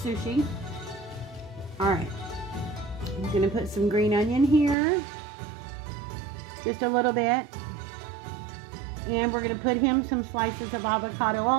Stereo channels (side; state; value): left; drops out; at 4.8 s